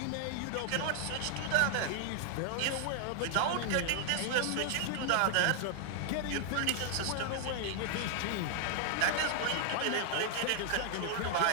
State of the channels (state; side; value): different; both; correlation 0.00